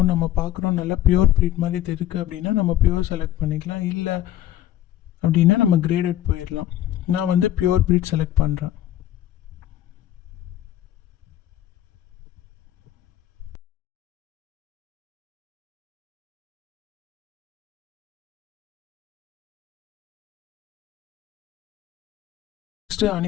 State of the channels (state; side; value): quieter; right; 12.8 dB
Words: நம்ம பார்க்குறோம் நல்லா பியூர் ப்ரீட் மாதிரி தெரியுது அப்படின்னா நம்ம பியூர் செலக்ட் பண்ணிக்கலாம். இல்லை அப்படின்னா நம்ம கிரேடட் போயிடலாம். நான் வந்து பியூர் ப்ரீட் செலக்ட் பண்ணுறேன். நெக்ஸ்ட்டு